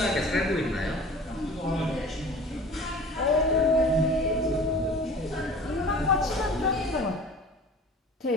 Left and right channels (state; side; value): normal; both; correlation 0.43